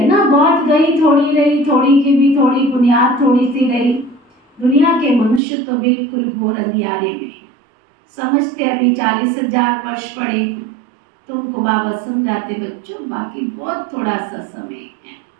ना, बहुत गई थोड़ी रही, थोड़ी की भी थोड़ी बुनियाद थोड़ी सी रही। दुनिया के मनुष्य तो बिल्कुल घोर अंधियारे में है, समझते अभी 40,000 वर्ष पड़े। तुमको बाबा समझाते बच्चों बाकी बहुत थोड़ा सा समय है,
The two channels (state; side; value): drops out; left; at 5.4 s